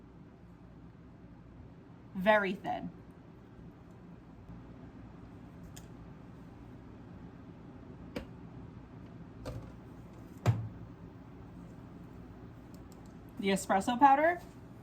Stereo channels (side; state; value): both; identical; correlation 1.00